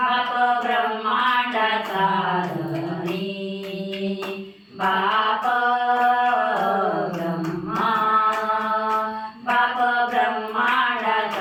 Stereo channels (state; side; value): identical; both; correlation 1.00